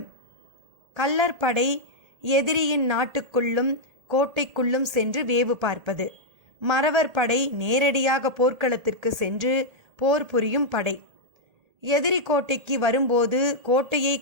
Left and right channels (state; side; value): late; left; 1.8 ms